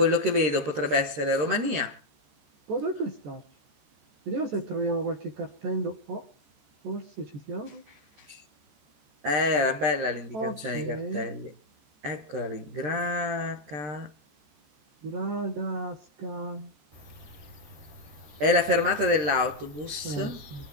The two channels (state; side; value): late; left; 13 ms